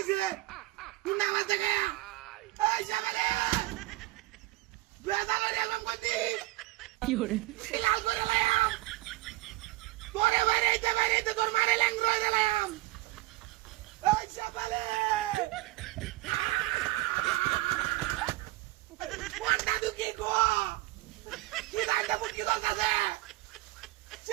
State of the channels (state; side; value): quieter; left; 18.9 dB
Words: গুন্ডা আমার থেকে এই সকালে বেজালে রে আমি কইতি কি করে লাল করে লাইম তোরে বাইরে তোর মারে ল্যাং রয়ে গেলাম এই সকালে কোনটা দুকি গো কি দাইতে মুটকি দলতাছে